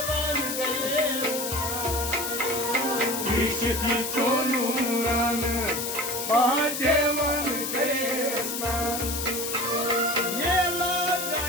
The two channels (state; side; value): noise; left; hiss, 3 dB below the sound